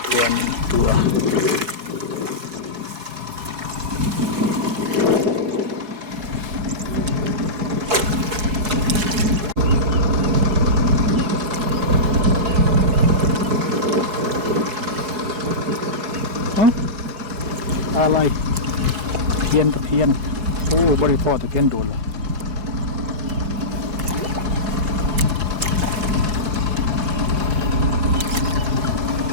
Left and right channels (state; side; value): late; left; 4.7 ms